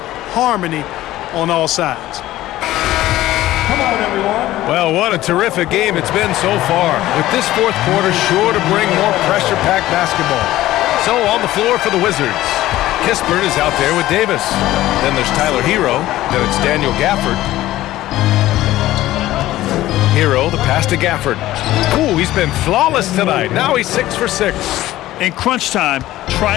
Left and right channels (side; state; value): right; quieter; 15.4 dB